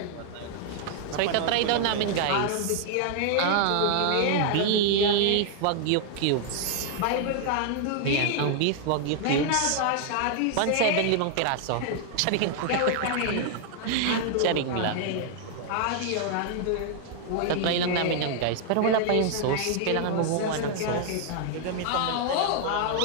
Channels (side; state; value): both; different; correlation 0.00